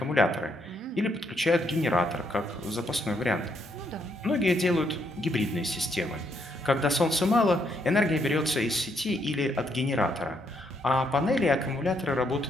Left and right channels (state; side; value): normal; both; correlation 0.74